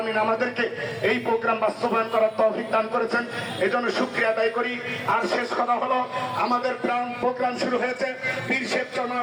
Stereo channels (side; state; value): both; identical; correlation 1.00